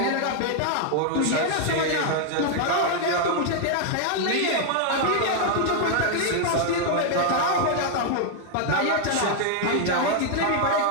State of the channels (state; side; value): different; both; correlation 0.00